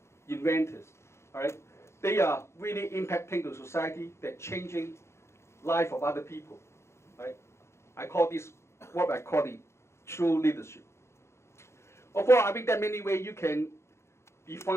inventors, all right? They are really impacting the society, they're changing life of other people, right? I call this what I call the true leadership. Of course, I think there are many ways you can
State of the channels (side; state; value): right; late; 0.13 ms